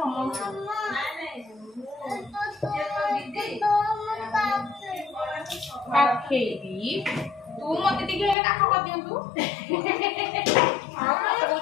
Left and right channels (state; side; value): drops out; right; at 8.3 s